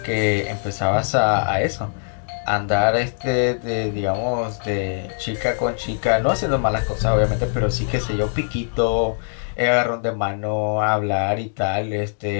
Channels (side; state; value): right; silent; digital silence